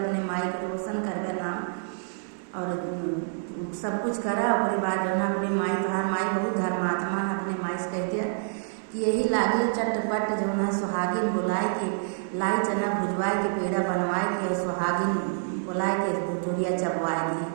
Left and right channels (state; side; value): silent; left; 60 dB below the other